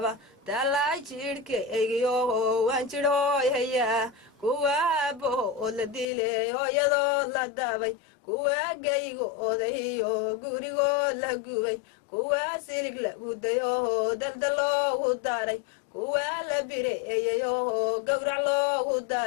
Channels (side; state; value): right; drops out; at 6.1 s